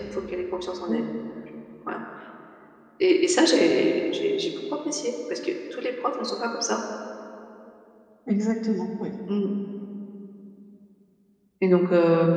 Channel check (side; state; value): both; identical; correlation 1.00